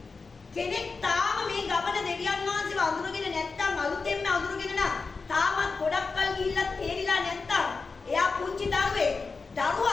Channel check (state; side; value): quieter; right; 4.4 dB